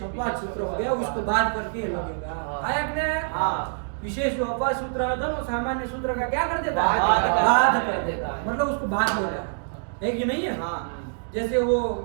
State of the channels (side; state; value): left; silent; digital silence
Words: अपवाद सूत्र हो गया, उसको बात करके लगेगा। आया कि नहीं? विशेष जो अपवाद सूत्र होता है वो सामान्य सूत्र का क्या कर देता है? बाध कर देता है, मतलब उसको बाध देता है कि नहीं है? जैसे वो